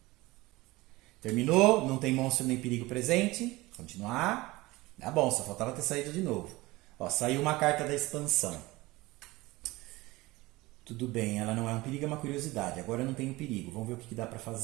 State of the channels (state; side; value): quieter; left; 20.5 dB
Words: Terminou, não tem monstro nem perigo presente. Continuar. Tá bom, só faltava ter saído de novo. Ó, saiu uma carta da expansão. Tudo bem, ela não é um perigo, é uma curiosidade. Agora eu não tenho perigo. Vamos ver o que dá para